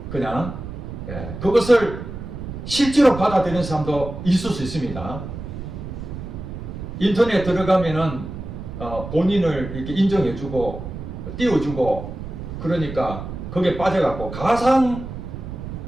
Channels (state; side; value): noise; right; rumble, 9 dB below the sound